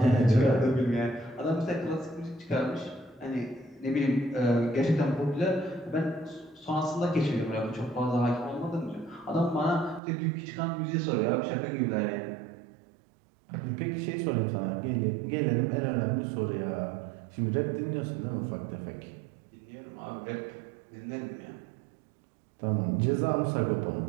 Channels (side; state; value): left; drops out; at 10.0 s